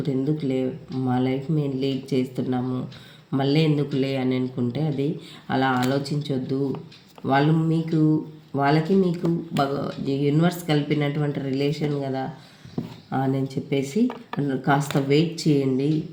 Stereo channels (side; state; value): both; identical; correlation 1.00